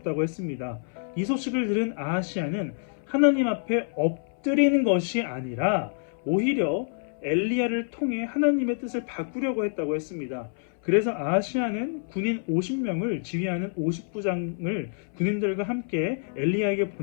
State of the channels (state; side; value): silent; right; 60 dB below the other